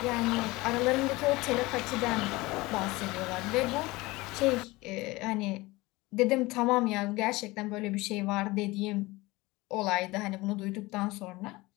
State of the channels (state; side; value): quieter; right; 21.3 dB